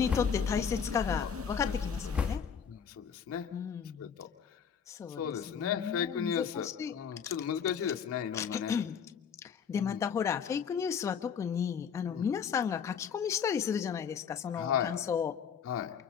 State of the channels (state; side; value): quieter; right; 7.1 dB